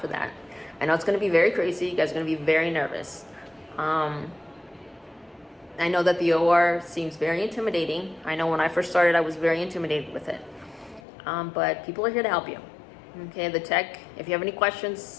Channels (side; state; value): right; drops out; at 11.0 s